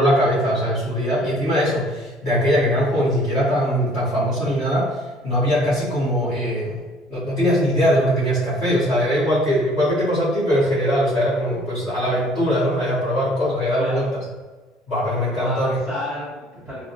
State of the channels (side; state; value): both; normal; correlation 0.56